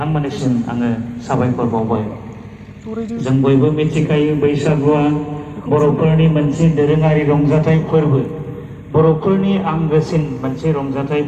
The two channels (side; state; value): both; identical; correlation 1.00